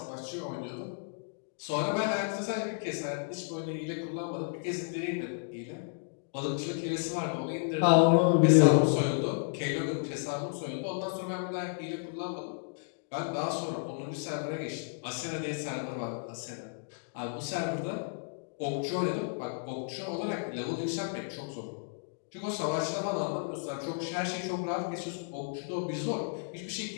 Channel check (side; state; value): right; silent; digital silence